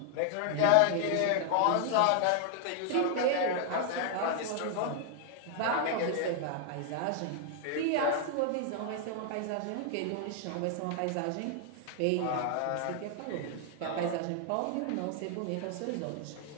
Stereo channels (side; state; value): both; different; correlation 0.00